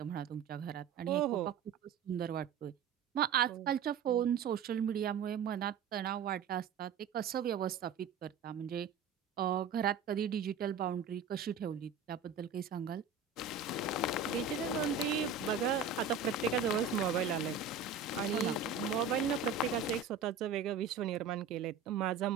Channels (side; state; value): left; quieter; 5.8 dB